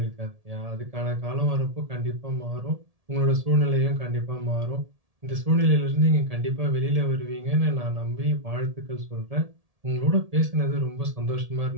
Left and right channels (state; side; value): late; left; 1.7 ms